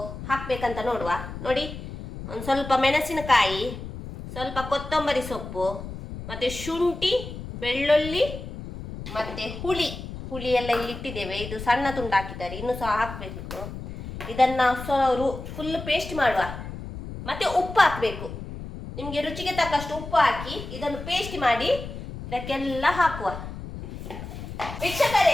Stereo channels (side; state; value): left; noise; rumble, 10 dB below the sound